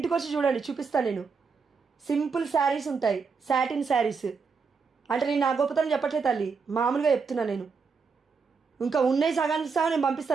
వచ్చి చూడండి, చూపిస్తాను నేను. సింపుల్ శారీస్ ఉంటాయి, సాటిన్ శారీస్. అంటే నేను నా గొప్పతనం చెప్పట్లేదు తల్లి, మామూలుగా చెప్తున్నాను నేను. ఇంకా ఉన్నాయి సగానికి సగం నేను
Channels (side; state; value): left; quieter; 5.2 dB